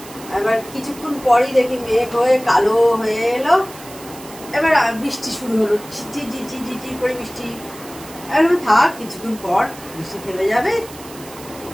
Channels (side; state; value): right; noise; hiss, 17 dB below the sound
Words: এবার কিছুক্ষণ পরই দেখি মেঘ হয়ে কালো হয়ে এলো, এবার বৃষ্টি শুরু হলো, ঝিঝি ঝিঝি ঝিঝি করে বৃষ্টি। এবার থাক, কিছুক্ষণ পর বৃষ্টি থেমে যাবে।